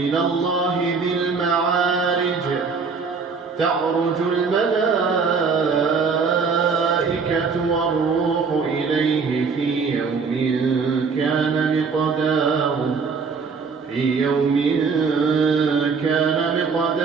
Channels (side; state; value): left; quieter; 5.1 dB